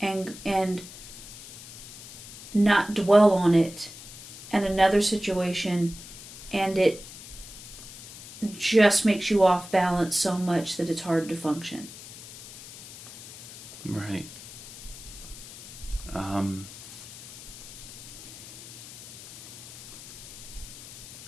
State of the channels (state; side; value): noise; left; hiss, 15 dB below the sound